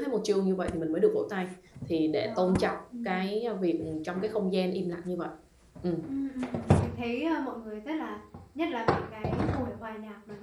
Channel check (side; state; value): both; identical; correlation 1.00